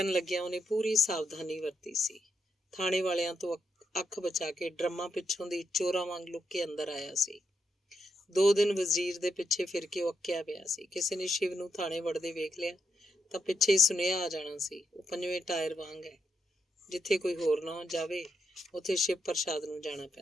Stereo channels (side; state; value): both; normal; correlation 0.81